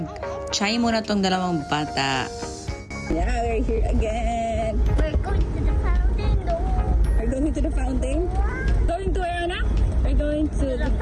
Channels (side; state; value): both; identical; correlation 1.00